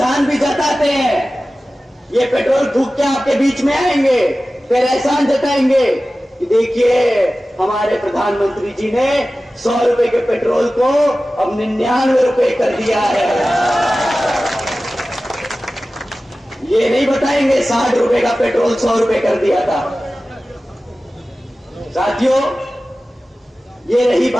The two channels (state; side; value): normal; both; correlation 0.96